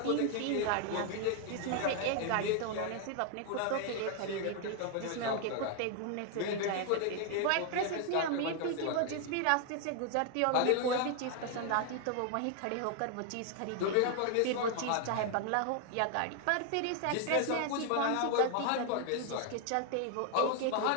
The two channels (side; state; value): both; different; correlation 0.00